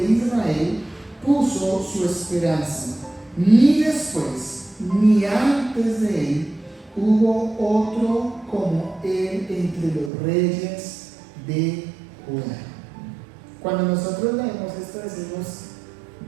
Israel puso su esperanza, ni después ni antes de él hubo otro como él entre los reyes de Judá. Cuando nosotros leemos esto decimos,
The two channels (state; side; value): drops out; left; at 10.1 s